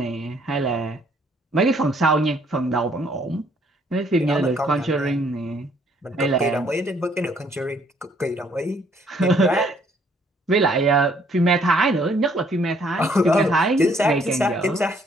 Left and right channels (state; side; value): normal; both; correlation 0.65